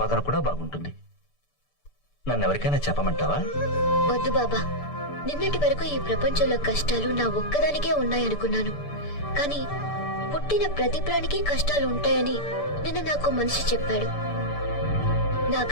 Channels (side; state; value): right; late; 6.8 ms